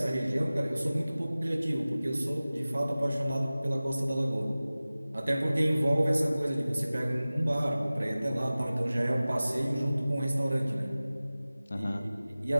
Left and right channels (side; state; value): both; inverted; correlation -0.98